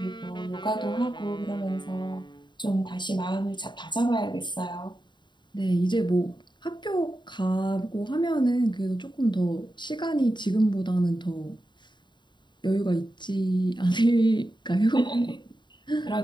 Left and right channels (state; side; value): late; right; 0.22 ms